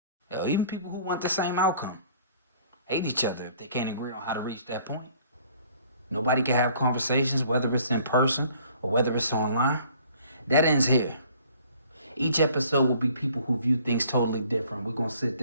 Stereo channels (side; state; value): both; inverted; correlation -0.56